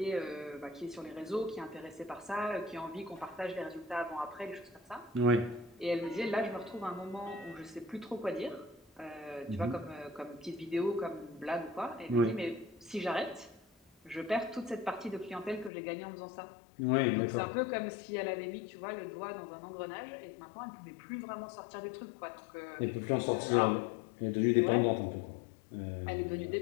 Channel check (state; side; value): drops out; right; at 15.7 s